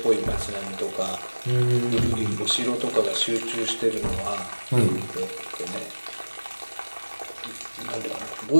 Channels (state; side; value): inverted; both; correlation -1.00